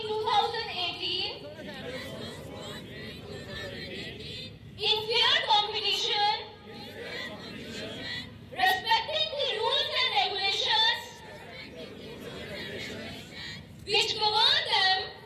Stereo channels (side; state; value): both; identical; correlation 1.00